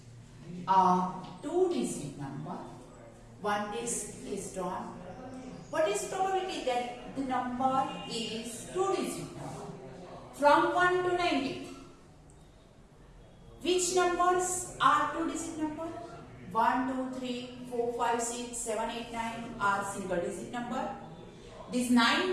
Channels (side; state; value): both; identical; correlation 1.00